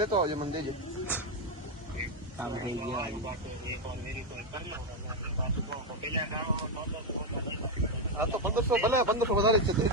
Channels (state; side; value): normal; both; correlation 0.06